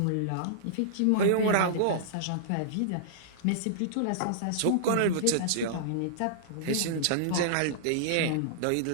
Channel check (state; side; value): different; both; correlation -0.02